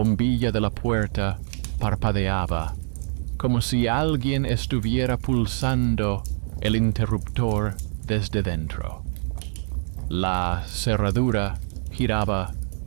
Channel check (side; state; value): left; silent; digital silence